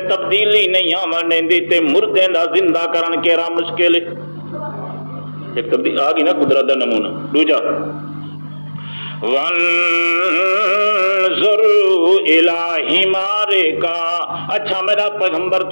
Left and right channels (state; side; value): inverted; both; correlation -1.00